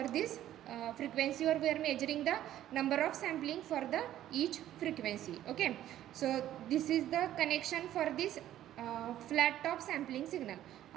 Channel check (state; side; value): quieter; left; 12.5 dB